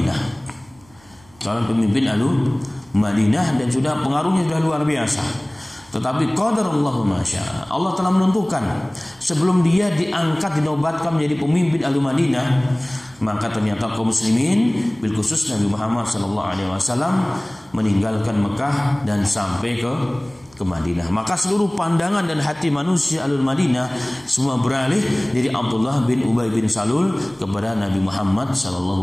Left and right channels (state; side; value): noise; right; hum, 28 dB below the sound